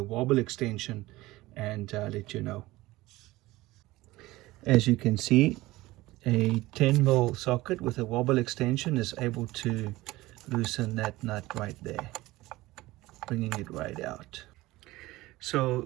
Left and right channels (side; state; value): left; quieter; 18.7 dB